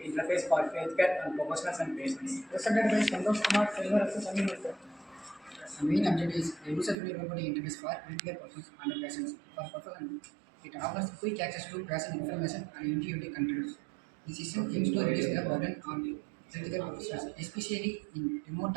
interface for healthcare and professionals and patients. Presented by Santosh Kumar, Silver Access Administrator. The main objective is a user-friendly robotic interface for healthcare professionals and patients. For professionals, it offers quick access to patient information and intuitive controls. The system aims to reduce the burden on healthcare professionals, especially in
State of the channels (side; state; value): left; drops out; at 7.0 s